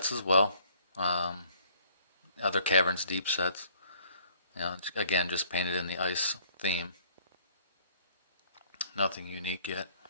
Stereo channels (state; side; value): inverted; both; correlation -0.59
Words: as well, other Caverns Deep sets. Again, just painted in the ice theme. Nothing unique yet.